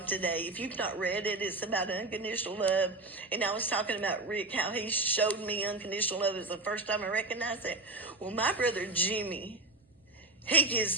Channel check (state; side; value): quieter; left; 3.1 dB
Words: today, if you've not read it, it's about unconditional love. And I was talking about Rick, how he showed me unconditional love. It was the first time I recognized it. Well, my brother Jimmy, he